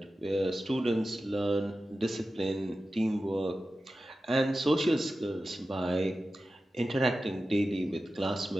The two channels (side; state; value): both; normal; correlation 0.93